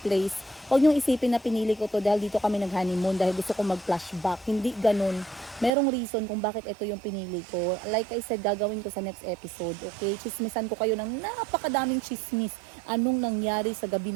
huwag niyong isipin na pinili ko to dahil dito kami nag-honeymoon dahil gusto ko mag-flashback. Hindi ganun. Merong reason kung bakit ito yung pinili ko. Like I said, gagawin ko sa next episode. Okay? Chismisan ko kayo ng napakadaming chismis. Anong nangyari sa gabi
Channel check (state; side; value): drops out; left; at 5.7 s